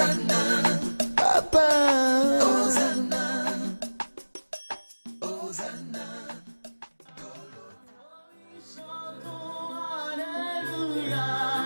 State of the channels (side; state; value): both; inverted; correlation -1.00